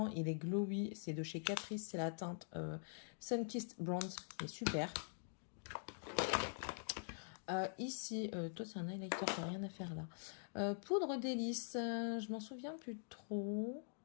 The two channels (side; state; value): right; silent; digital silence